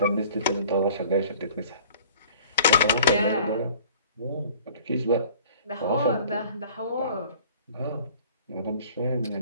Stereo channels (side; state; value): both; inverted; correlation -0.49